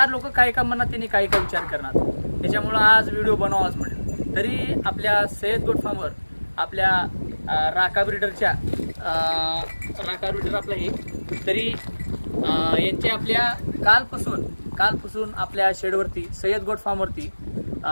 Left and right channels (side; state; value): both; inverted; correlation -1.00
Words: लोक काय का म्हणणार, त्यांनी काय काय विचार करणार. त्याच्यामुळं आज व्हिडिओ बनवावाच म्हणलं. तरी आपल्या सय्यद गोट फार्मवर आपल्या राका ब्रिडरच्या राका ब्रिडर आपलं हे तरी यांचे आपल्या कालपासून आपल्या शेडवरती सय्यद गोट फार्मवरती